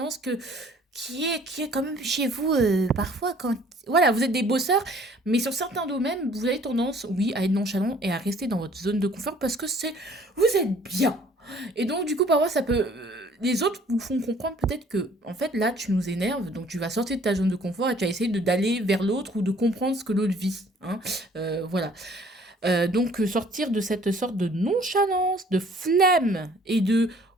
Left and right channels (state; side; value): normal; both; correlation 0.56